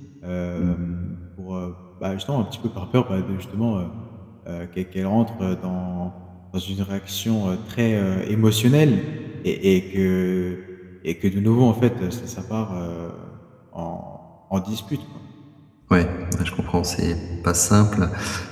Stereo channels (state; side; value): identical; both; correlation 1.00